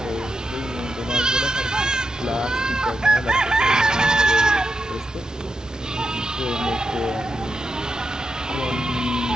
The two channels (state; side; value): normal; both; correlation 0.87